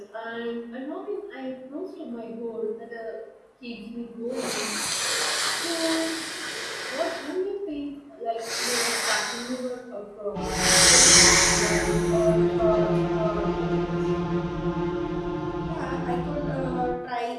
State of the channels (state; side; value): identical; both; correlation 1.00